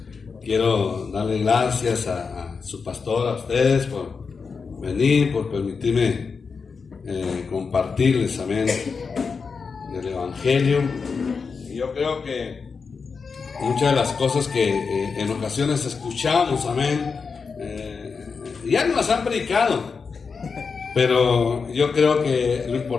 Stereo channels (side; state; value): right; quieter; 5.2 dB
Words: quiero darle gracias a su pastor, a ustedes, por venir, por permitirme compartirles, amén, del Evangelio. Y yo creo que muchas de las cosas que en ocasiones escuchamos, amén, ya nos las han predicado. Pero yo creo que lo